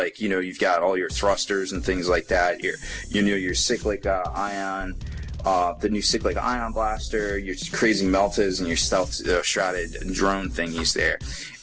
you've got all your thrusters and things like that. Your cyclic ion, the new cyclic ion blaster, your crazy meltas, and your stealth shrouded drone thingies there.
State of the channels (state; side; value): identical; both; correlation 1.00